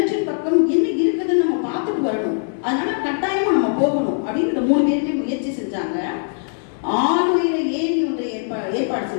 பக்கம் என்ன இருக்குதுன்னு நம்ம பார்த்துட்டு வரணும், அதனால கட்டாயமா நம்ம போகணும் அப்படின்னு இந்த 3 பேருமே முயற்சி செஞ்சாங்க. ஆளுயிர ஏரி ஒன்றை ஏற்பாடு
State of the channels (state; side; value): silent; right; digital silence